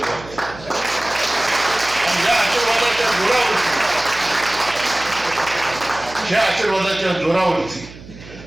आणि या आशीर्वादाच्या जोरावरती ह्या आशीर्वादाच्या जोरावरती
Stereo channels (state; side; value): noise; right; hum, 18 dB below the sound